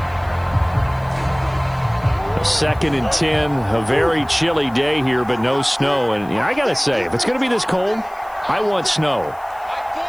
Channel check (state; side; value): noise; left; hiss, 28 dB below the sound